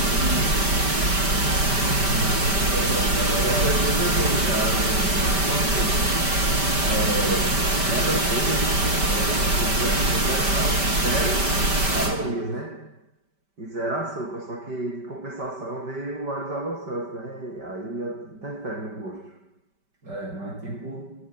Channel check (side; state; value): left; late; 5.1 ms